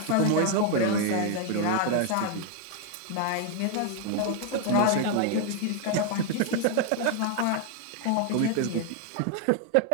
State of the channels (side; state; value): both; different; correlation 0.00